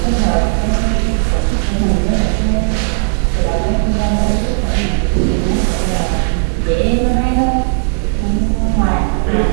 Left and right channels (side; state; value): left; silent; digital silence